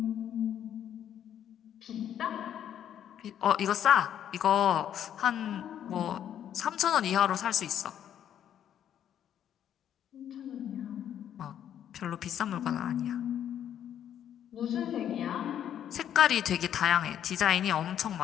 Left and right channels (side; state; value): right; quieter; 10.0 dB